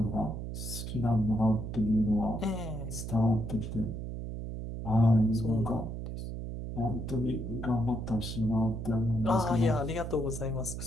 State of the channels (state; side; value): noise; right; hum, 6 dB below the sound